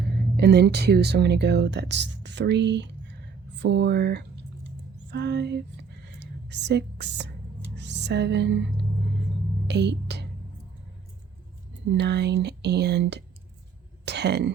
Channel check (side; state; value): left; quieter; 5.8 dB